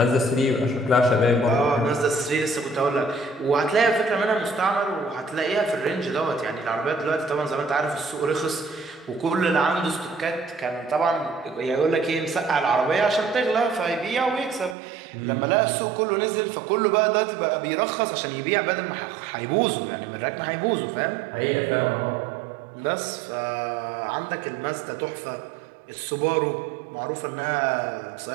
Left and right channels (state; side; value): drops out; left; at 14.8 s